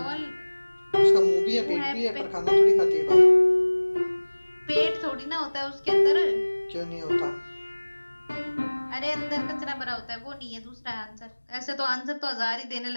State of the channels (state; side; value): inverted; both; correlation -1.00